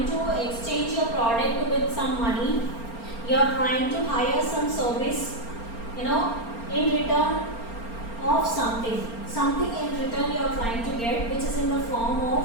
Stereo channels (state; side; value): late; right; 4.4 ms